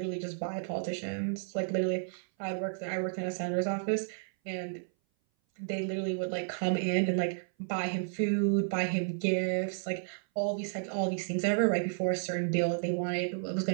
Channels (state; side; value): silent; left; 56 dB below the other